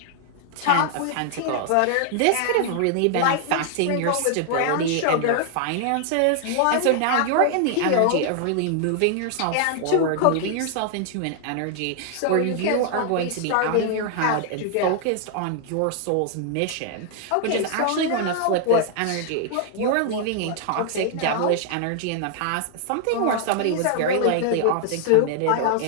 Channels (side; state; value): both; different; correlation 0.00